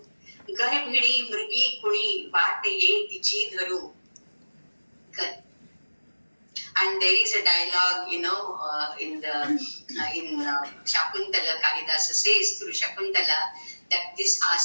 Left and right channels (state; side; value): inverted; both; correlation -1.00